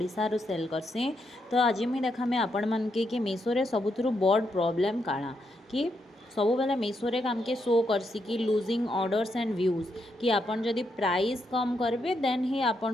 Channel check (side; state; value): both; normal; correlation 0.80